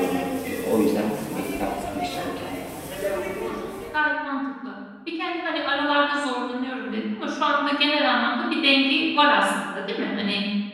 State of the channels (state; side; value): identical; both; correlation 1.00